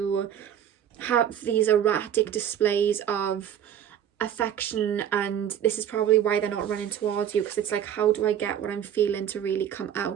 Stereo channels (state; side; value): quieter; left; 9.7 dB